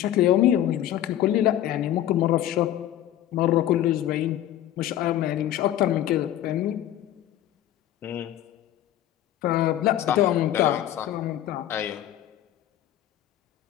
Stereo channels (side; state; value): right; quieter; 12.3 dB